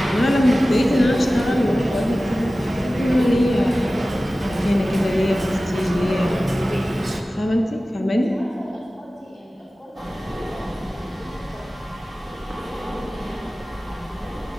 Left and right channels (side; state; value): both; normal; correlation 0.96